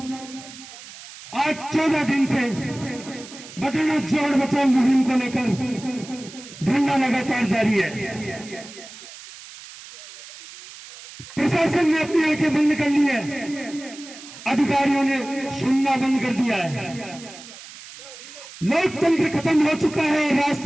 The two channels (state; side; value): noise; right; hiss, 16 dB below the sound